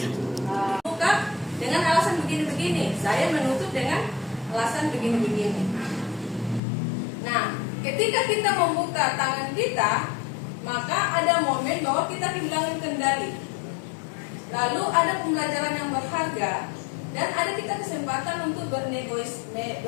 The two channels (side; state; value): right; drops out; at 6.6 s